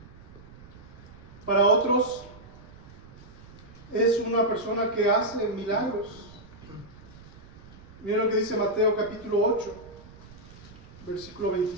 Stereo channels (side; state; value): right; noise; rumble, 20 dB below the sound